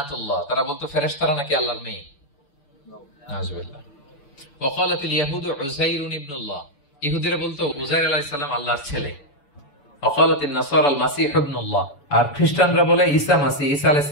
তারা বলতো ফেরেশতারা নাকি আল্লাহর মেয়ে। নাউযুবিল্লাহ। ওয়া ক্বালাতিল ইয়াহুদু উযাইরুন ইবনুল্লাহ, ইহুদিরা বলতো উযাইর আলাইহিস সালাম আল্লাহর ছেলে। ওয়া ক্বালাতিন নাসারা আল মাসীহ ইবনুল্লাহ, আর খ্রিস্টানরা বলে ঈসা মাসীহ, ঈসা আলাইহিস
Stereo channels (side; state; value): right; late; 7.1 ms